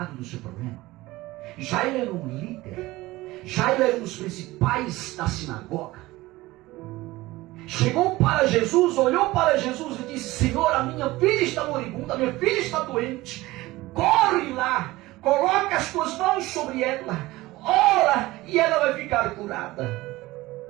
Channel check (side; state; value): left; quieter; 19.0 dB